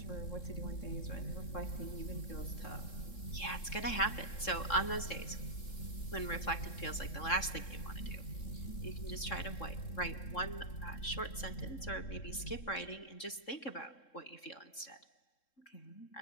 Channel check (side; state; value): right; late; 3.7 ms